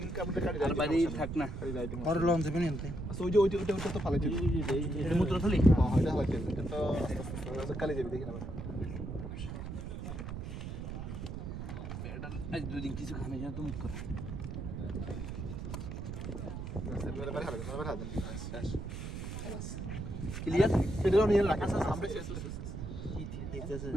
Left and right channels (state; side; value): noise; right; rumble, 6 dB below the sound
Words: বাড়ি থাক না মূত্র থালি কালি যাবি দেখি না। আজ 2 দিন কিছু খানে যা তুমি করে ক্লিয়ার সেটা নিয়ে রাখা আমরা